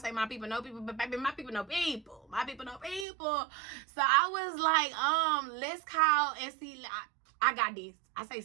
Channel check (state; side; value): drops out; left; at 3.1 s